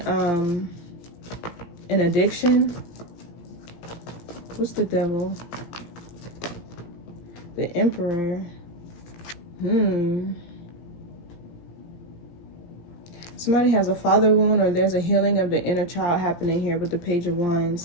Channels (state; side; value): late; right; 17 ms